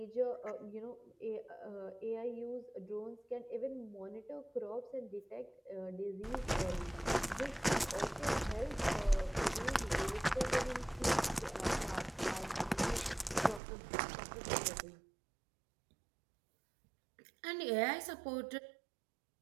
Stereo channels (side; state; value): left; drops out; at 13.6 s